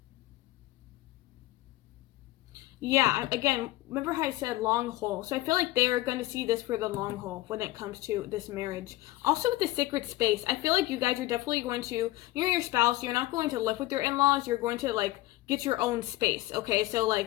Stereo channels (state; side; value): quieter; right; 18.0 dB